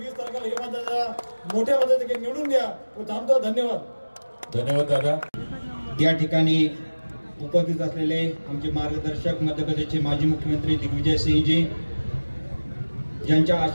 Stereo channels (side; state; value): both; inverted; correlation -1.00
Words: तारखेला हे माझ्या मोठ्या पद्धतीने निवडून द्या व थांबतो। धन्यवाद। धन्यवाद दादा। या ठिकाणी उपस्थित असलेले आमचे मार्गदर्शक मध्य प्रदेशचे माजी मुख्यमंत्री दिग्विजय सिंहजी, ज्यांच्या